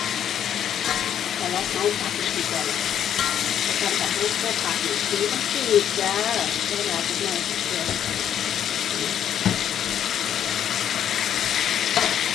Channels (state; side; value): quieter; right; 9.7 dB